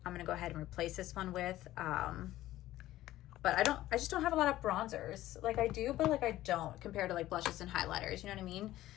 I'm going to go ahead and replace this one with, but I just don't have a lot of bronzers. Like I do, but like I don't compared to like blushes and highlighters. You know what I mean?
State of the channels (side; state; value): right; quieter; 15.0 dB